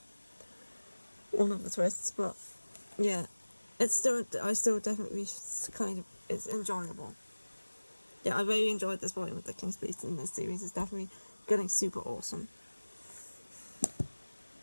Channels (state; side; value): inverted; both; correlation -1.00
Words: one of the twists, but yeah, I still definitely kind of, it's enjoyable. Yeah, I really enjoyed this volume with The King's Beast, and this series is definitely getting super awesome.